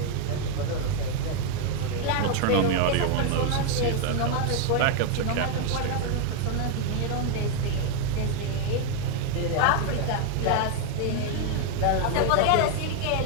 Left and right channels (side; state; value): both; different; correlation 0.01